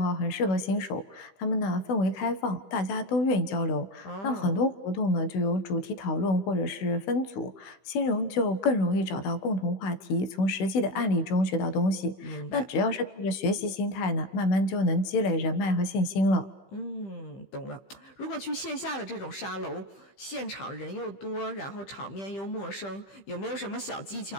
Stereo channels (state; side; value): late; right; 15 ms